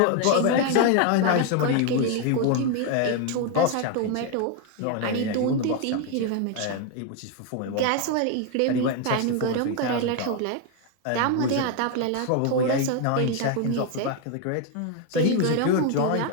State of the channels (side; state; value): both; different; correlation 0.01